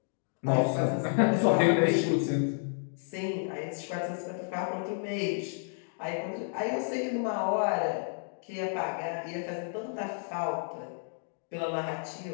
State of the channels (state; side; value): silent; right; 56 dB below the other